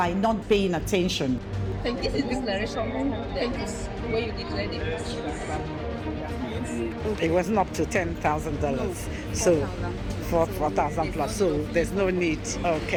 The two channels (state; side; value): identical; both; correlation 1.00